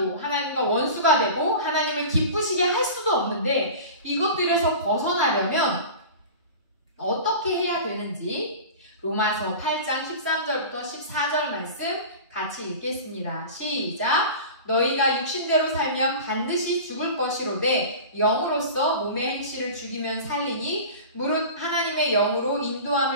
하나님과 원수가 되고 하나님을 기쁘시게 할 수도 없는데 이것들에서 벗어나려면 어떻게 해야 되는지 로마서 8장 13절부터 14절 말씀 같이 읽겠습니다. 시작! 너희가 육신대로 살면 반드시 죽을 것이로되 영으로서 몸의 행실을 죽이면 살리니 무릇 하나님의 영으로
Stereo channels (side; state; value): both; inverted; correlation -0.34